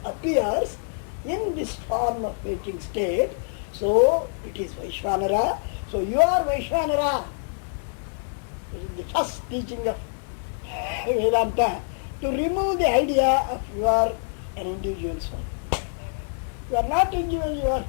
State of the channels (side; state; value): right; silent; digital silence